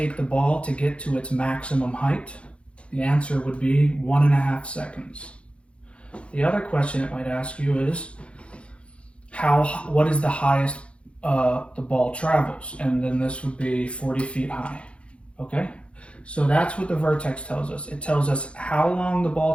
the ball to get to its maximum height? The answer would be 1.5 seconds. The other question it might ask you is, what is the highest the ball travels? And then this would be 40 feet high. Okay? So that's what the vertex tells us. It tells us how long the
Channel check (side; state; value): right; late; 0.060 ms